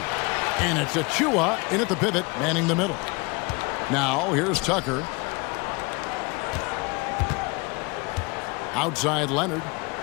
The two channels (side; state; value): right; quieter; 27.6 dB